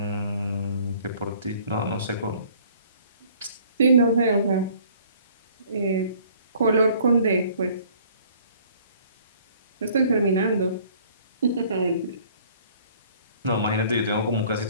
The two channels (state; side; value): inverted; both; correlation -0.56